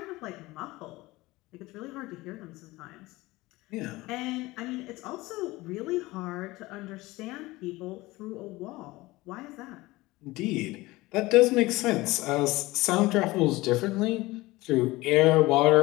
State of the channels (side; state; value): right; quieter; 20.1 dB